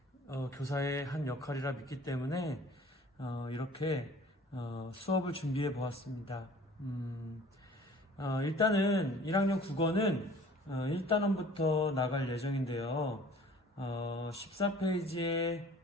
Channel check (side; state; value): both; normal; correlation 0.49